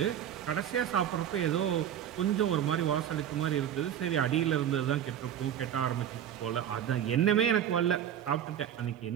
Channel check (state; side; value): quieter; left; 10.0 dB